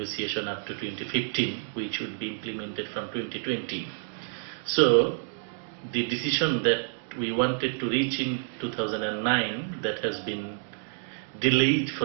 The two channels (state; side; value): silent; left; 59 dB below the other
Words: up to 2015, which would be implemented from 2020. So the decision that we wanted to reach in 2009, that has been delayed